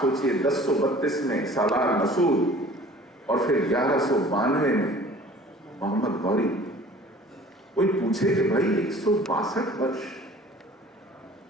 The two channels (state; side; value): normal; both; correlation 0.48